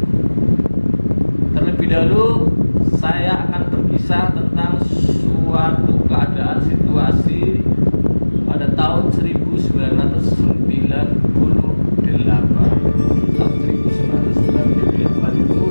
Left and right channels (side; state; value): both; inverted; correlation -1.00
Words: Terlebih dahulu saya akan berkisah tentang suatu keadaan situasi pada tahun 1998. Tahun 1998 itu